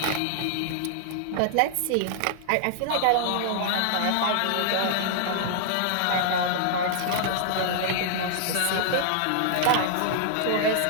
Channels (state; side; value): different; both; correlation -0.01